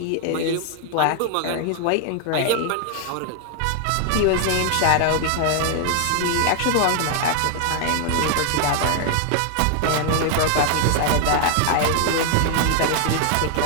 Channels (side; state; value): both; different; correlation 0.00